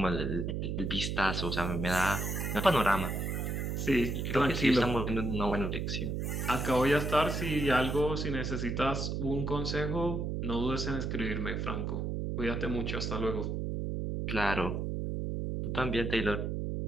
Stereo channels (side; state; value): right; noise; hum, 2 dB below the sound